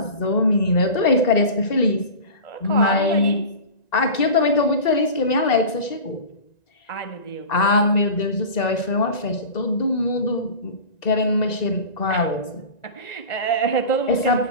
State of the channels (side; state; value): right; late; 1.9 ms